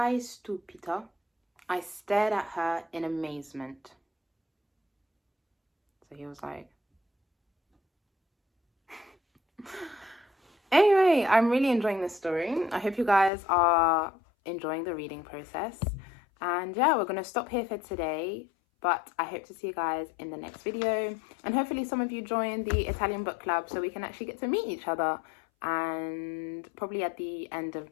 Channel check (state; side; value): drops out; right; at 13.3 s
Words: stupita. I stared at her in amazement. So he was like... Anyway, I'm really enjoying this story. I hope you guys are enjoying the reading process. And yeah, we're going to stop here for today. But I hope to see you guys in the next video. And hopefully some of you join the Italian book club so we can actually get to meet each other. And probably at the end of